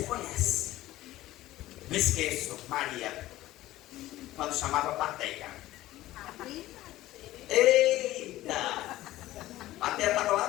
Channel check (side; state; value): right; quieter; 15.8 dB